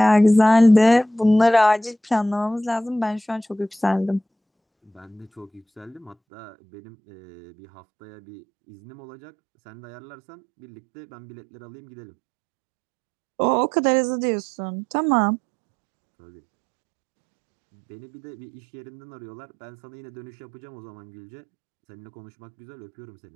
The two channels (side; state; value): left; drops out; at 6.2 s